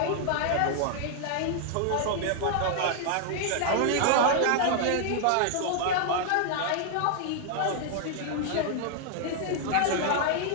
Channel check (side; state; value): both; different; correlation 0.00